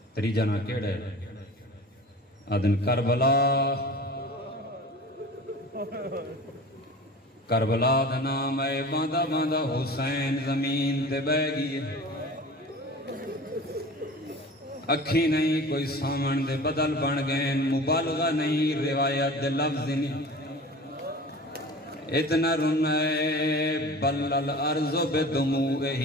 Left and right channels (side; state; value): both; normal; correlation 0.38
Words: تریجا نا کیڑا ہے آدھن کربلا. کربلا دا نام ہے باندھا باندھا حسین زمین تے بہ گئی. اکھی نہیں کوئی سامن دے بدل بن گئے مبالغہ نہیں روایت دے لفظ نہیں. اتنا رنے بل الارض